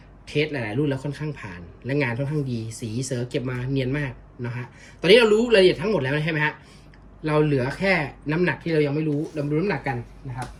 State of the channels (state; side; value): identical; both; correlation 1.00